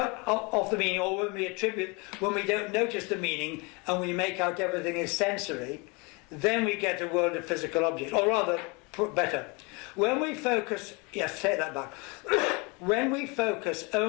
off the meaning, or when we attribute, when we don't notice the meaning and we make out everything is sensory, then we get a world of physical objects. Or rather, put better, when we focus, yes, take that back, when we focus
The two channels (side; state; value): right; quieter; 29.1 dB